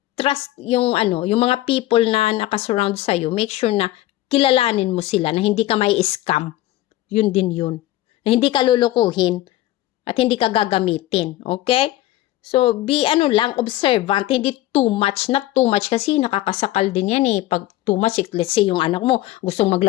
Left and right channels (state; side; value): quieter; right; 15.7 dB